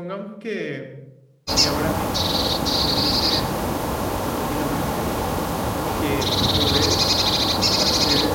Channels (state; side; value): identical; both; correlation 1.00